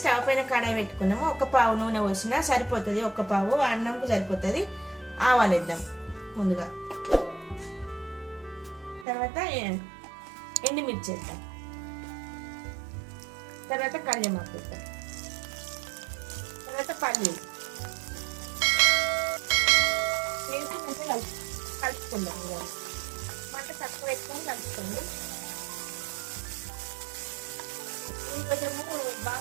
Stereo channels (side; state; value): left; drops out; at 9.1 s